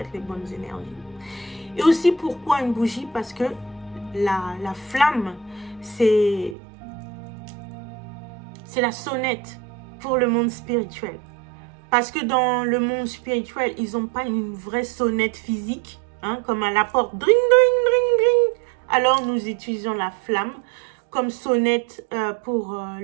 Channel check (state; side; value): drops out; left; at 6.6 s